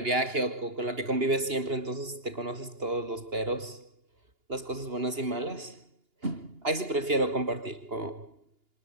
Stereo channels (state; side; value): late; left; 2.8 ms